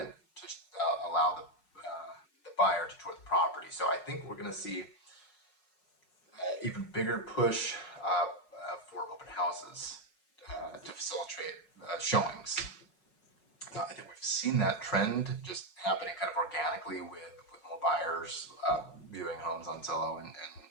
to allow the buyer to tour the property. So I think we're going to see even bigger push for open houses to facilitate showings. I think we've seen that trend just happening kind of organically with more buyers viewing homes on Zillow and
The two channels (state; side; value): late; right; 5.5 ms